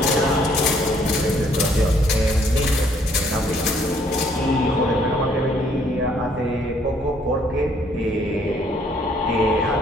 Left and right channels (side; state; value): both; normal; correlation 0.65